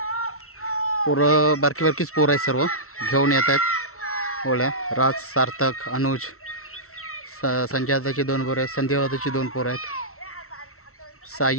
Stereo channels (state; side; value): late; right; 0.63 ms